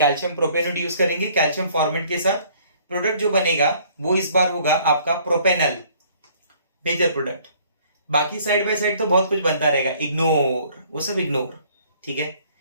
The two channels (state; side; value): inverted; both; correlation -0.59